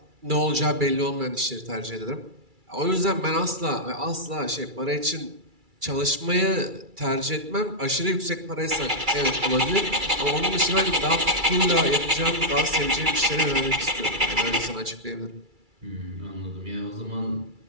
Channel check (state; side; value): late; left; 2.3 ms